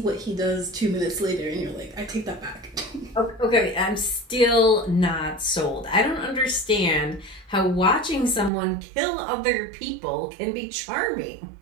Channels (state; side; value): drops out; left; at 8.5 s